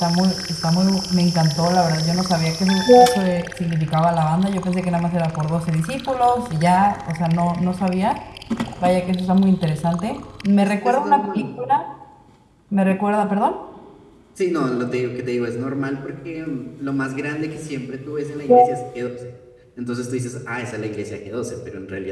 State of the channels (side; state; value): both; identical; correlation 1.00